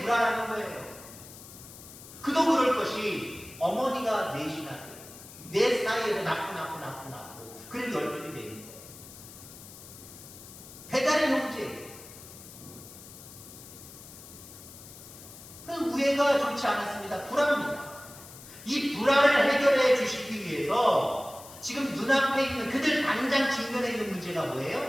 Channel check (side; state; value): left; noise; hiss, 17 dB below the sound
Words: 불화라는 거예요. 그도 그럴 것이 어머니가 넷이나 돼요. 넷 사이에서 낳고 그래도 10명이 되는 거예요. 배달의 형제. 그 우애가 좋지 않았습니다. 불화입니다. 이 불화를 해결해 주시기 위해서 지금 눈앞에 있는 그들 당장 직면해 있는 문제가